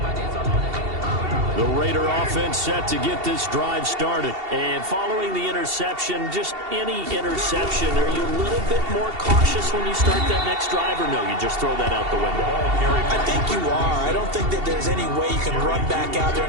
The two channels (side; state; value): left; late; 2.7 ms